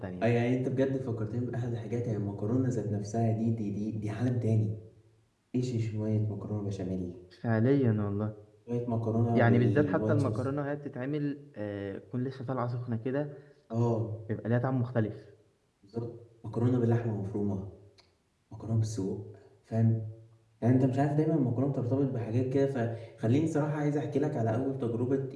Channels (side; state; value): both; identical; correlation 1.00